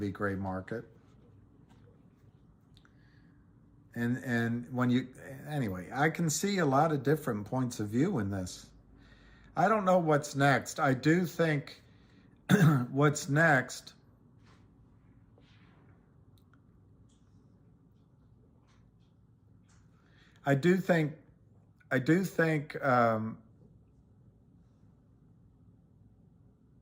gray market. And when anyway, I can see a lot of different points of view in this. I don't know what's next. I do think what's next, I do think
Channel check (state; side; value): identical; both; correlation 1.00